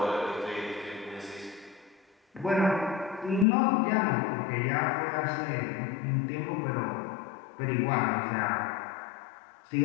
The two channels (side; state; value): right; drops out; at 3.5 s